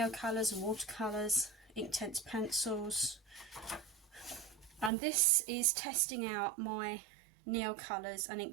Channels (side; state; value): left; drops out; at 4.9 s